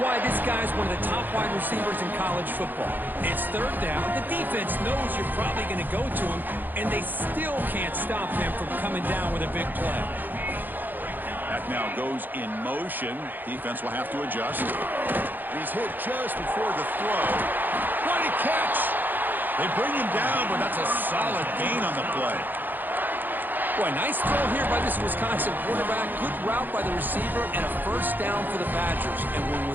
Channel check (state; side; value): late; left; 0.088 ms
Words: this guy's one of the top wide receivers in college football. It's 3rd down. The defense knows you're probably going to go to him, and they still can't stop him from coming down with a big play. That now goes in motion. Defense will have to adjust. He's hit just before the throw. What a catch! They bring him down, but that's a solid gain on the play. Boy, nice throw here by this Wisconsin quarterback. Good route by the receiver and a 1st down for the Badgers. And when